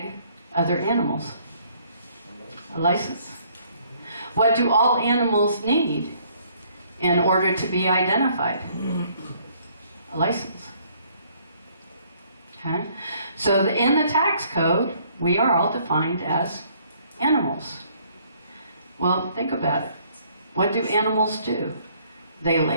other animals? A license. What do all animals need in order to be identified? A license. Okay? So in the tax code, we are all defined as animals. Well, think about it. What do animals do? They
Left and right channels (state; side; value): inverted; both; correlation -0.63